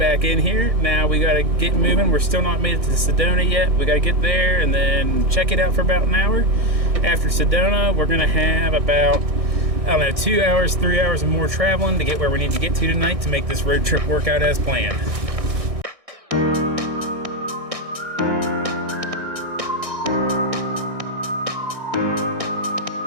in here. Now we gotta get moving. We're still not made it to Sedona yet. We gotta get there and then check it out for about an hour. After Sedona, we're gonna have about, I don't know, 2 hours, 3 hours of more traveling to get where we need to get to tonight to make this road trip work out as planned.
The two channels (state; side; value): late; left; 1.6 ms